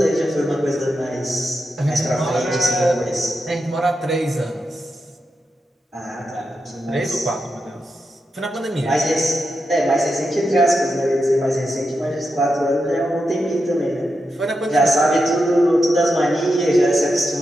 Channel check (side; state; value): both; normal; correlation 0.87